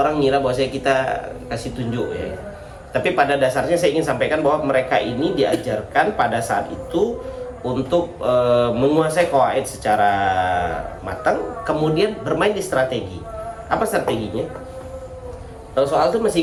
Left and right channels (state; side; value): identical; both; correlation 1.00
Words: ngira bahwa kita kasih tunjuk ya. Tapi pada dasarnya saya ingin sampaikan bahwa mereka ini diajarkan pada saat itu untuk menguasai qawaid secara matang, kemudian bermain di strategi. Apa strateginya? Soal itu masih